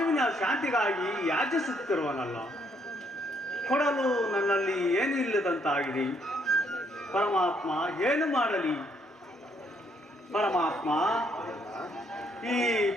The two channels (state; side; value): normal; both; correlation 0.70